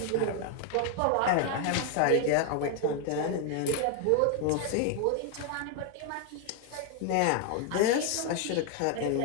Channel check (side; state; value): both; different; correlation 0.01